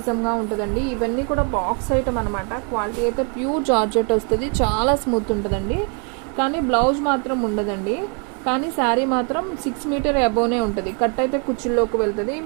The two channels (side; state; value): left; quieter; 38.3 dB